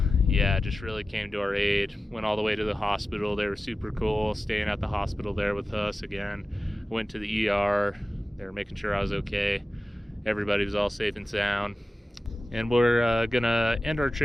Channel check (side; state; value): both; normal; correlation 0.94